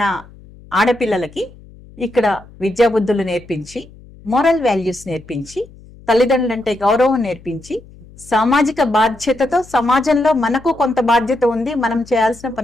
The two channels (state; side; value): noise; left; hum, 22 dB below the sound